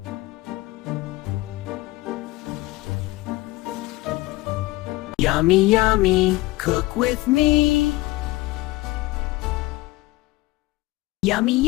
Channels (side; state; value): right; quieter; 19.6 dB